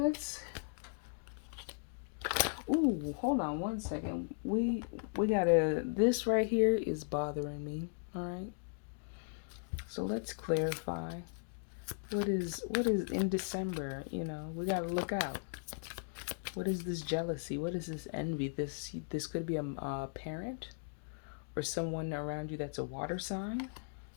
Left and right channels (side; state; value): right; silent; digital silence